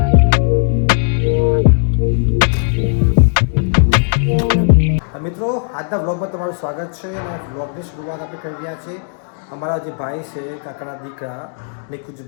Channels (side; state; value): right; silent; 57 dB below the other